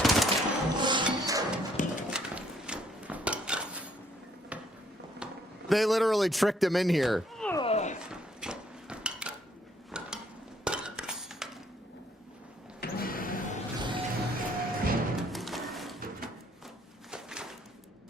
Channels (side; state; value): both; normal; correlation 0.66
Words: They literally tricked him in here.